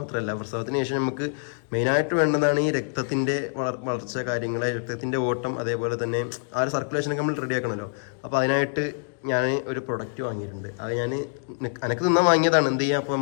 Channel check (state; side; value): silent; right; digital silence